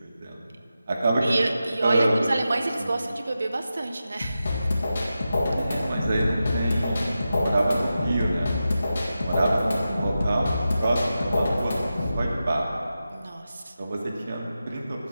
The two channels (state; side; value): inverted; both; correlation -0.91